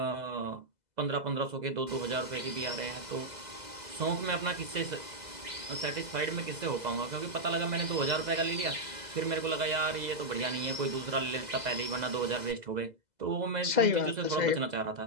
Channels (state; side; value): late; left; 2.0 ms